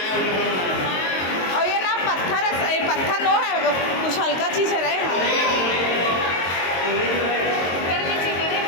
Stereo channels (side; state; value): right; late; 22 ms